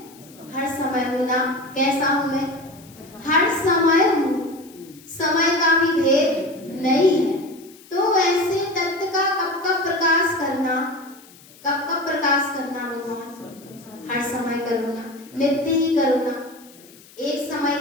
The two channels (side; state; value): left; noise; hiss, 24 dB below the sound